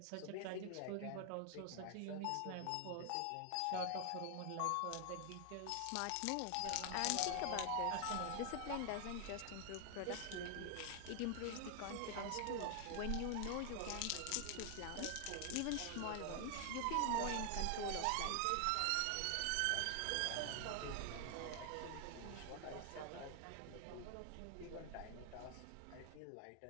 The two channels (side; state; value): both; different; correlation 0.00